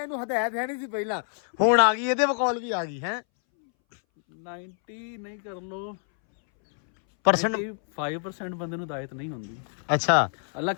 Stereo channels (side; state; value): right; silent; 60 dB below the other